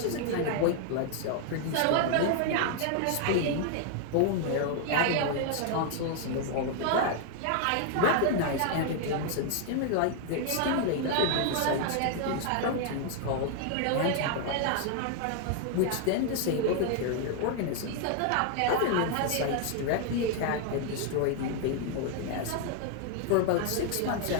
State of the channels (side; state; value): both; different; correlation 0.00